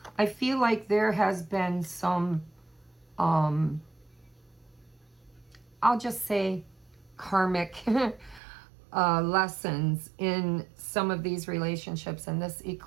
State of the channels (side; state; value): left; drops out; at 8.4 s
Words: I feel like there has been some, I'll just say, karmic lessons in some of these relationships. And this